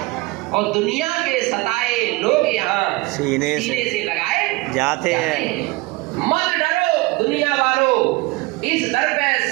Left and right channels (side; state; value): left; quieter; 22.7 dB